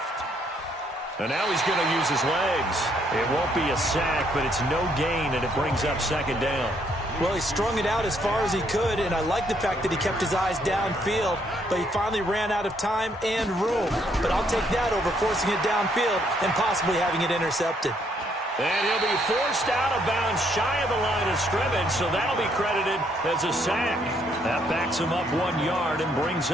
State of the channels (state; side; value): normal; both; correlation 0.70